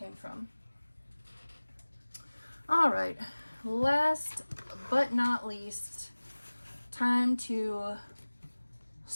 from. All right, last but not least, time to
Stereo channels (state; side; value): inverted; both; correlation -1.00